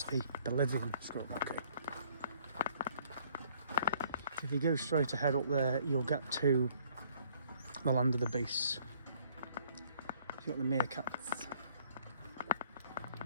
the Bolivian squirrel monkey. If you go straight ahead up there, you'll get to the land of the beasts. You've got the meerkats.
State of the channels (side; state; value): both; inverted; correlation -0.63